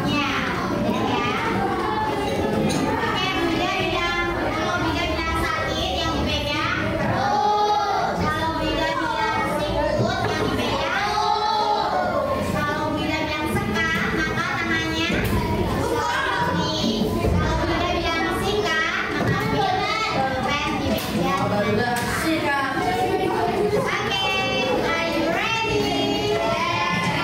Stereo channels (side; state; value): both; identical; correlation 1.00